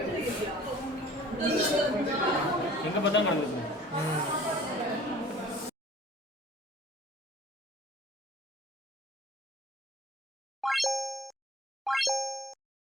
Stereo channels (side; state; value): both; normal; correlation 0.49